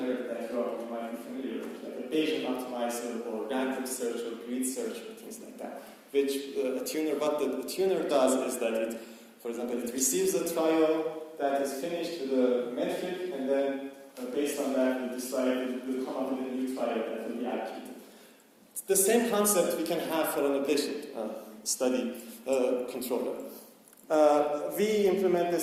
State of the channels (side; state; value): both; identical; correlation 1.00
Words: that you might be familiar with, like a Bayesian optimizer or random search or grid search or things like that. Which what the tuner does is that it, for example, it receives a trial that is finished with a metric, and then based on that, we decide it will come up with a new trial that will be allocated. It's the same concept we can have for an Ablation study controller. We implement